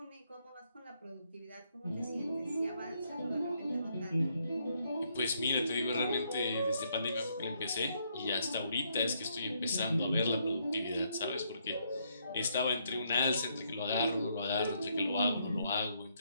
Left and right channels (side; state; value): both; inverted; correlation -0.73